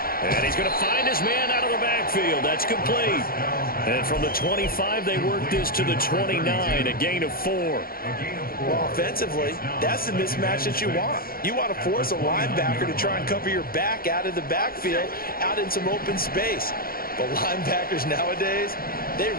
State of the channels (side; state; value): right; late; 0.43 ms